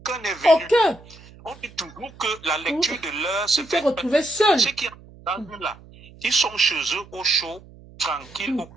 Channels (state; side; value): noise; right; hum, 22 dB below the sound